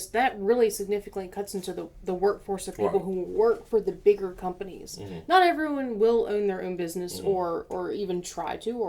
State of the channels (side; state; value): both; identical; correlation 1.00